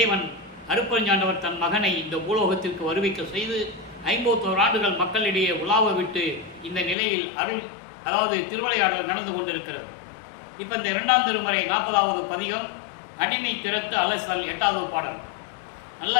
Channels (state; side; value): drops out; right; at 7.0 s